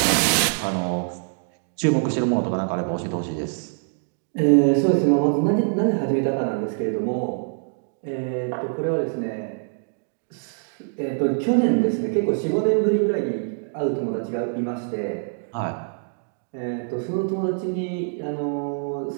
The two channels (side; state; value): left; silent; digital silence